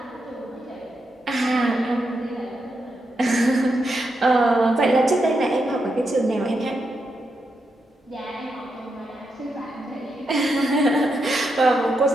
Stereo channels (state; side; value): normal; both; correlation 0.84